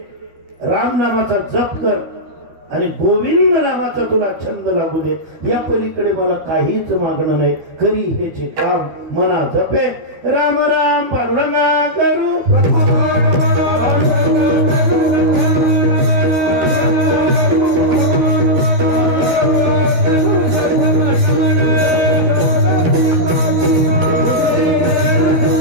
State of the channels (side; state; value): left; late; 13 ms